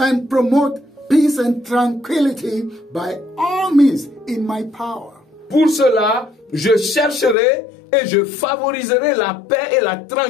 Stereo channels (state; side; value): drops out; right; at 7.4 s